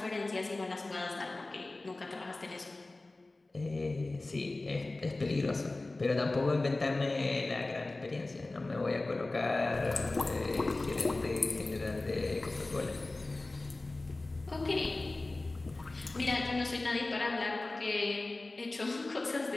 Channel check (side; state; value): right; quieter; 3.1 dB